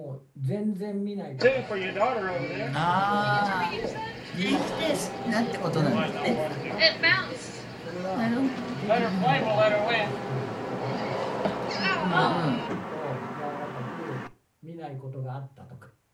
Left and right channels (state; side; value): identical; both; correlation 1.00